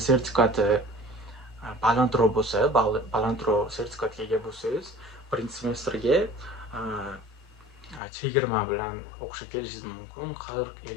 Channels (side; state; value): right; drops out; at 8.0 s